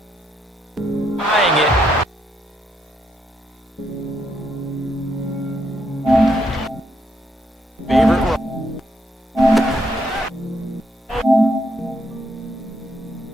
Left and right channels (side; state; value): both; normal; correlation 0.76